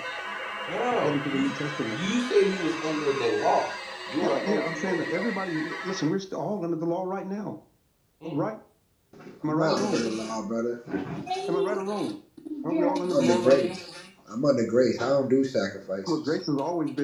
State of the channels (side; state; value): both; identical; correlation 1.00